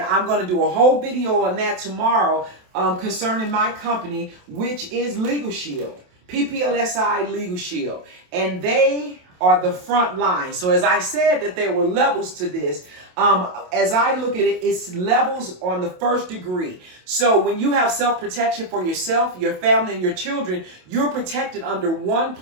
I'm going to do a whole video on that tomorrow concerning my company, which is Legal Shield, PPLSI Legal Shield. And they are the front line. So as I said that there were levels to this, as I look at it, it's levels on the first degree. So when you have self-protection for yourself, your family, and your children, you're protected under one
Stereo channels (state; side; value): late; left; 27 ms